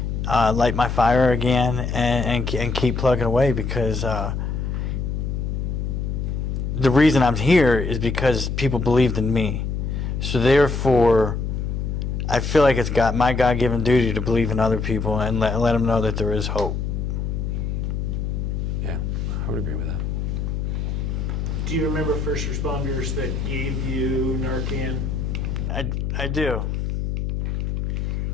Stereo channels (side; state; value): left; noise; hum, 2 dB below the sound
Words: light my fire again, and keep plugging away, because the reason I'm here is because people believed in me. So therefore, I feel like it's my God-given duty to believe in other people and let them know that there is hope. Yeah, I would agree with that. Do you remember first responders that gave you Narcan? I do.